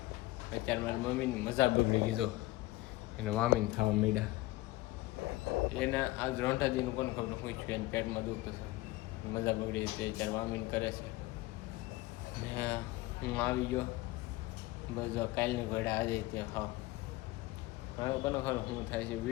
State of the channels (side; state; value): right; quieter; 19.0 dB